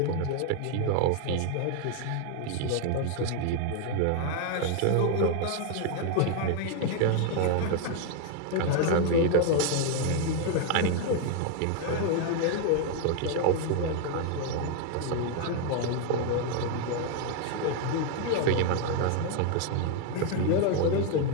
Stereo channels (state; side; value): different; both; correlation 0.00